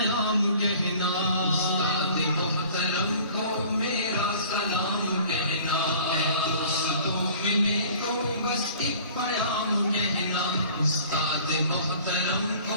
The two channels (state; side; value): inverted; both; correlation -0.48